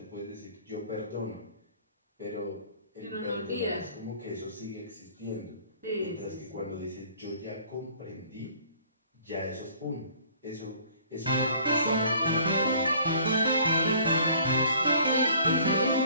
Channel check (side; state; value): both; inverted; correlation -0.55